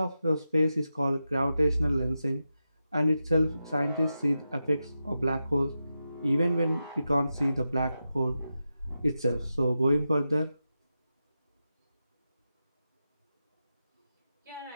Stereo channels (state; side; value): inverted; both; correlation -0.90